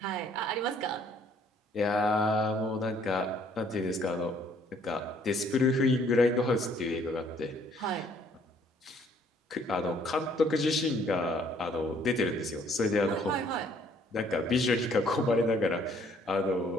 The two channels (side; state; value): both; normal; correlation 0.62